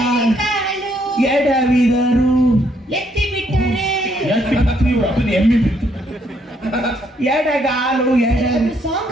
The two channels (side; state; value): both; normal; correlation 0.71